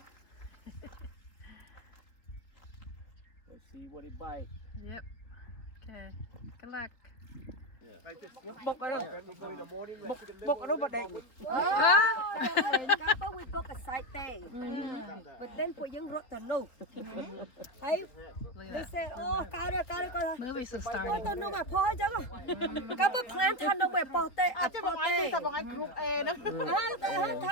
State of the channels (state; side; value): late; right; 3.6 ms